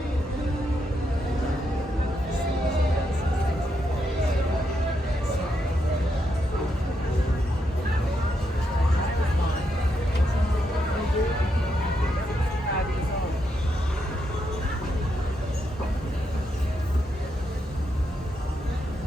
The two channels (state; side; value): normal; both; correlation 0.81